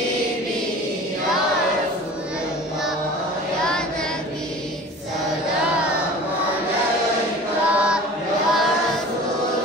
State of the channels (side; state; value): both; normal; correlation 0.41